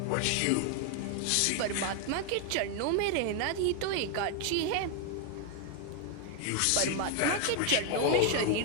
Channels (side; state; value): both; different; correlation 0.01